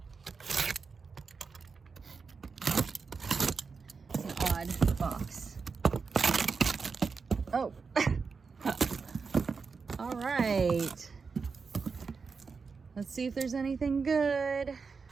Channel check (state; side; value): quieter; left; 5.0 dB